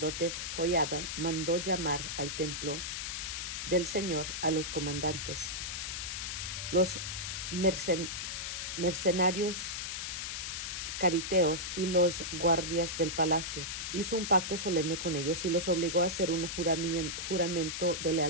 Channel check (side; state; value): left; noise; hiss, 4 dB below the sound